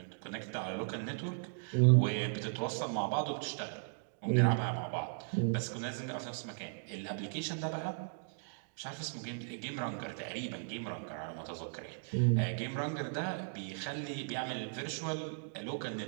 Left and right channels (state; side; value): silent; left; digital silence